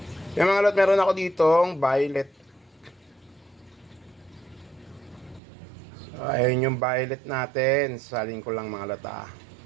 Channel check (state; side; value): drops out; left; at 5.4 s